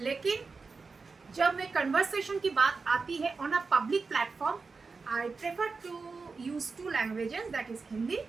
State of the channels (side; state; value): left; quieter; 4.5 dB